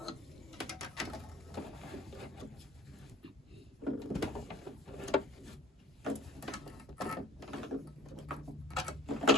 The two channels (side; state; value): both; normal; correlation 0.47